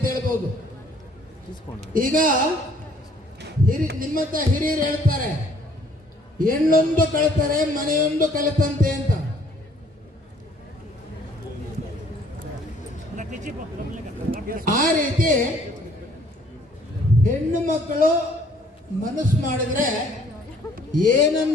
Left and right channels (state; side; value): normal; both; correlation 0.60